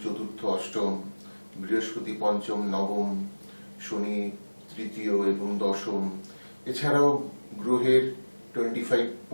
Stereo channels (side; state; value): both; inverted; correlation -1.00